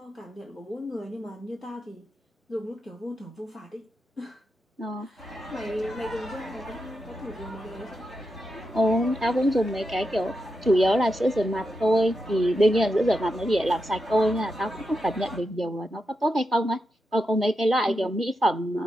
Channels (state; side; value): normal; both; correlation 0.87